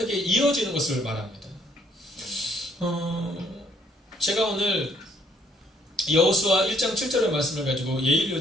이어지는 것을 말합니다. 제가 오늘 여호수아 1장 7절의 말씀을 가지고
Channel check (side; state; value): both; normal; correlation 0.65